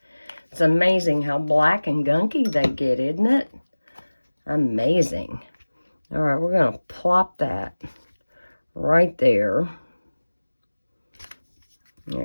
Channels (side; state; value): both; inverted; correlation -1.00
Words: It's amazing how black and gunky they get, isn't it? Amazing. All right, we're going to plop that right there.